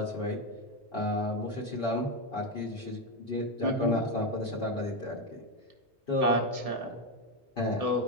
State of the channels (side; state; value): both; normal; correlation 0.08